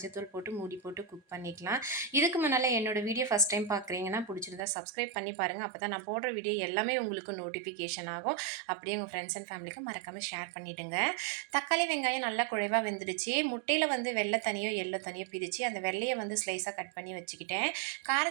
போட்டு மூடி போட்டு குக் பண்ணிக்கலாம். இதுக்கு முன்னால் என்னோடய வீடியோ ஃபஸ்ட் டைம் பார்க்குறீங்கன்னா பிடிச்சிருந்தா சப்ஸ்கிரைப் பண்ணி பாருங்கள். அப்போ தான் நான் போடுற வீடியோ எல்லாமே உங்களுக்கு நோட்டிஃபிகேஷன் ஆகும். அப்படியே உங்கள் ஃப்ரெண்ட்ஸ் அண்ட் ஃபேமிலிக்கு மறக்காமல் ஷேர் பண்ணிவிடுங்க. தக்காளி வெங்காயம் நல்லா குழைவாக வெந்துடுச்சு. முட்டையில் வந்து வெள்ளை தனியோ எல்லோ தனியோ பிரித்து அந்த வெள்ளையை வந்து ஸ்லைஸாக கட் பண்ணி வச்சுக்கிட்டேன்.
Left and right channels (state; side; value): drops out; left; at 4.6 s